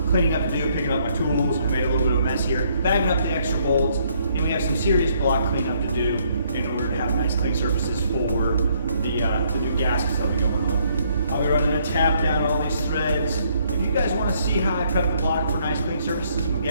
cleaning up to do, picking up my tools. We made a little bit of a mess here, bagging up the extra bolts, and we have some serious block cleanup to do in order to have nice clean surfaces for the new gaskets that'll be going on. I'll be running a tap down all these threads. If you guys want to see how I prep the block for nice clean surfaces and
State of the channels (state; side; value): inverted; both; correlation -0.68